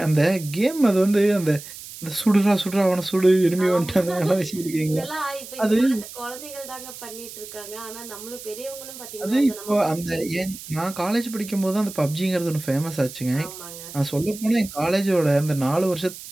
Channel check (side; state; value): right; noise; hiss, 14 dB below the sound